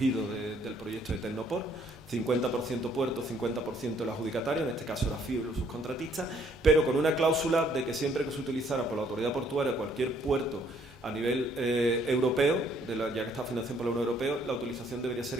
del proyecto de Tecnopor, 50% puerto, 50% el adjudicatario, en este caso era FIO y los subcontratistas, pero con una cláusula de que siempre que se utilizara por la autoridad portuaria cualquier puerto a nivel europeo, ya que está financiado por la Unión Europea, la utilización debería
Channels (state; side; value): normal; both; correlation 0.65